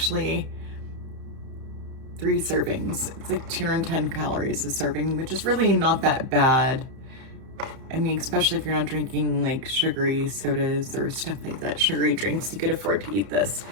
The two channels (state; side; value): late; left; 31 ms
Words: 3 servings. It's like 210 calories a serving, which is really not that bad. I mean, especially if you're not drinking like sugary sodas or stuff like that, sugary drinks, you could afford to eat this.